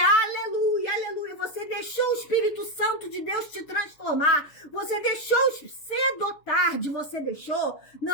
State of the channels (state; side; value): late; right; 6.7 ms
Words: aleluia, você deixou o Espírito Santo de Deus te transformar, você deixou cedo ou tarde, você deixou,